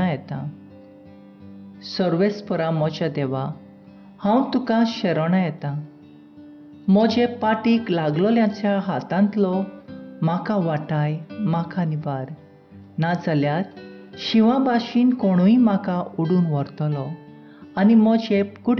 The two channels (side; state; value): both; identical; correlation 1.00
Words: येतां. सर्वेस्परा म्हज्या देवा, हांव तुका शरणा येतां. म्हजे पाटीक लागलोल्याच्या हातांतलो म्हाका वाटाय, म्हाका निबार. नाजाल्यार शिवा भाशेन कोणूय म्हाका उडून व्हरतलो आनी म्हजे